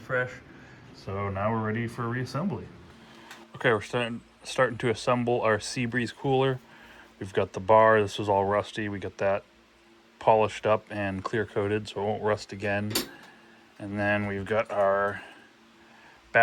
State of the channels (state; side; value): identical; both; correlation 1.00